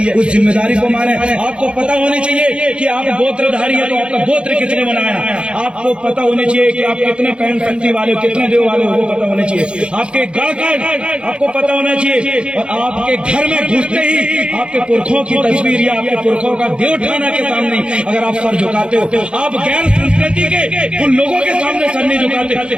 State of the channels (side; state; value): left; late; 0.056 ms